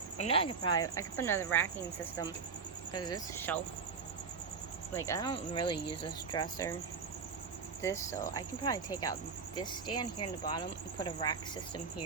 I know I could put another racking system. Because this shelf, like, I don't really use this dresser. So I can probably take out this stand here in the bottom and put a rack system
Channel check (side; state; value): left; quieter; 5.3 dB